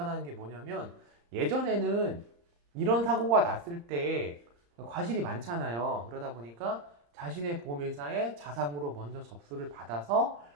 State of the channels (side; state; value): left; late; 35 ms